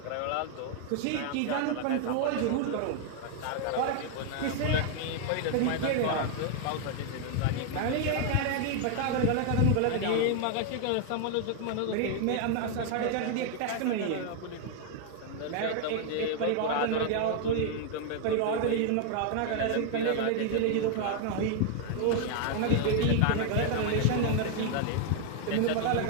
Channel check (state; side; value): different; both; correlation 0.00